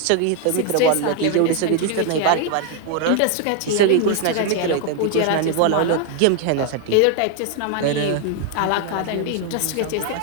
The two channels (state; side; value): different; both; correlation 0.00